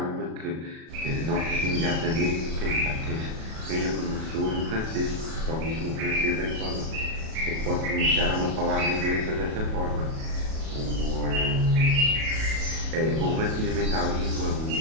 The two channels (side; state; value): left; late; 37 ms